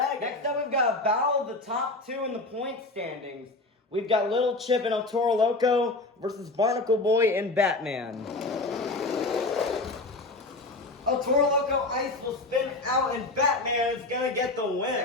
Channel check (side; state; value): right; quieter; 3.1 dB